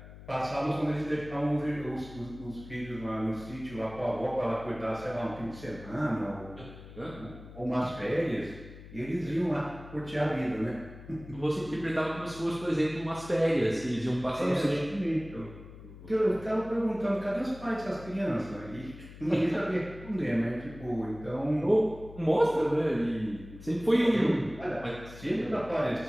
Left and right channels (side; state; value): left; noise; hum, 16 dB below the sound